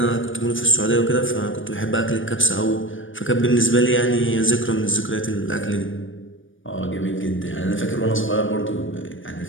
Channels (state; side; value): late; right; 0.57 ms